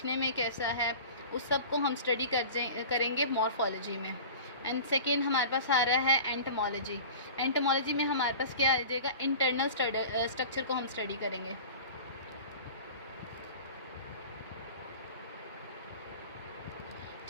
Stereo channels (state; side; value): inverted; both; correlation -0.38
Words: में कैसा है, उस सब को हम स्टडी करेंगे मॉर्फोलॉजी में. एंड सेकेंड हमारे पास आ रहा है एंटोमोलॉजी. एंटोमोलॉजी में हमारे पास क्या आ जाएगा, इंटरनल स्ट्रक्चर को हम स्टडी करेंगे.